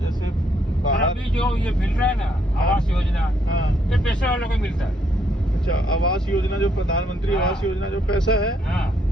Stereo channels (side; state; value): both; normal; correlation 0.72